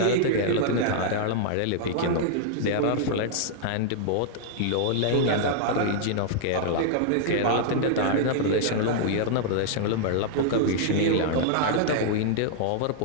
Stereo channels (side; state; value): both; different; correlation -0.01